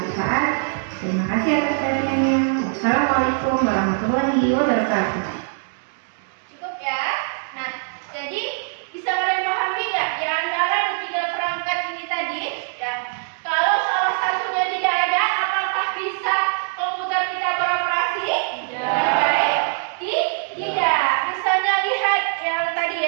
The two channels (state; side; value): silent; left; digital silence